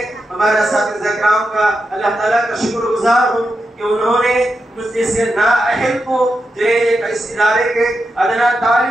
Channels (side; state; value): both; normal; correlation 0.87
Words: ہمارے اساتذہ کرام کا اللہ تعالیٰ کا شکر گزار ہوں کہ انہوں نے مجھ جیسے نااہل کو جو ہے اس ادارے کے ادنا